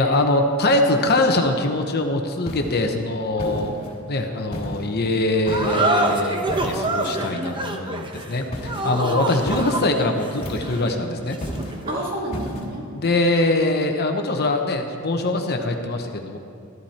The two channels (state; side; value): normal; both; correlation 0.15